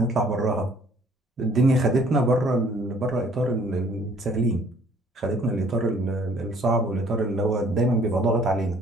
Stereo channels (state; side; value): normal; both; correlation 0.58